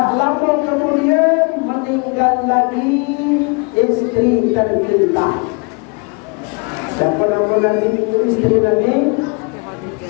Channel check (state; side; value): quieter; right; 33.5 dB